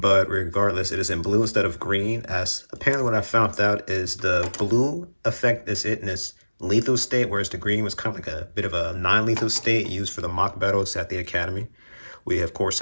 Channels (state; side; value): inverted; both; correlation -1.00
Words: regardless, it is in blue instead of green, as apparently what I found out is the blue effect is it in its lethal state, whereas the green was kind of like a bit of a non-lethal state used for the mock battles at the academy. We, of course,